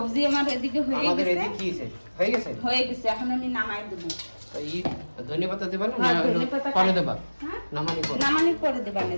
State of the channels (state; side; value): inverted; both; correlation -1.00